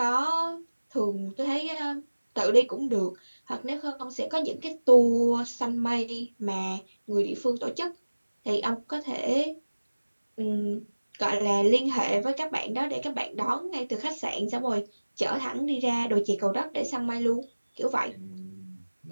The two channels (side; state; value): both; inverted; correlation -1.00